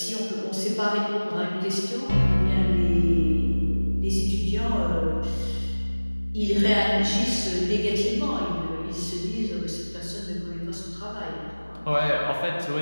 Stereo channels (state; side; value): inverted; both; correlation -1.00